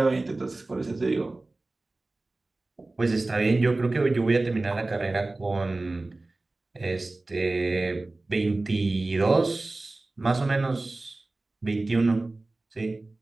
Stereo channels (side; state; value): left; quieter; 3.0 dB